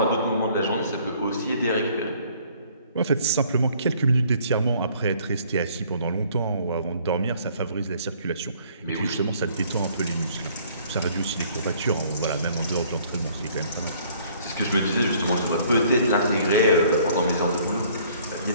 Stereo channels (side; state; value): both; inverted; correlation -0.58